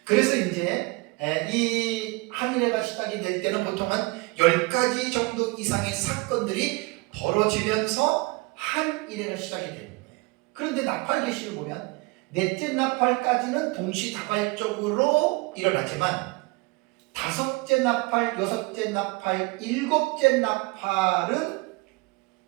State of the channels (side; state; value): left; quieter; 25.6 dB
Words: 그래서 이제 이 한일회가 시작이 될 때는 보통 한 10가지 정도 이상의 사건들이 벌어지면서 한일회가 시작이 되는 거예요. 그런데 나팔 계시를 보면 넷째 나팔까지는 동시다발적으로 일어나지만 다섯째 나팔, 여섯째 나팔, 일곱째 나팔은